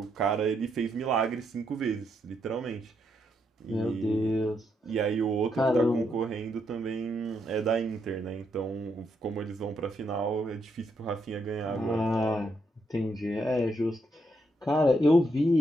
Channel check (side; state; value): both; normal; correlation 0.78